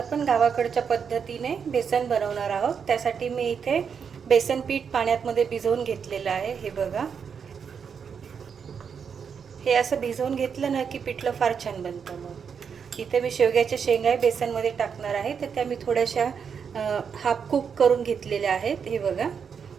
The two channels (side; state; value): left; quieter; 6.7 dB